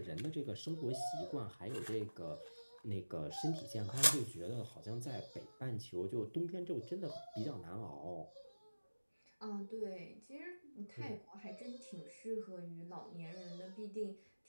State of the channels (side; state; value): both; inverted; correlation -1.00